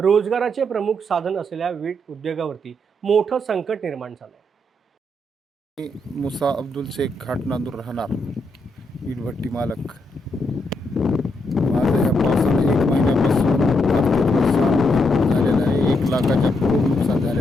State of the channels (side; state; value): both; normal; correlation 0.79